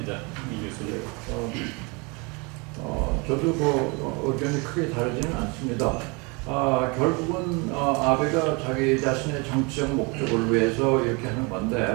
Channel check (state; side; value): quieter; left; 29.5 dB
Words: 이 교수님. 저도 그 의견이 크게 다르지는 않습니다. 결국은 아베가 자기 자신의 정치적 목적을 위해서 이렇게 하는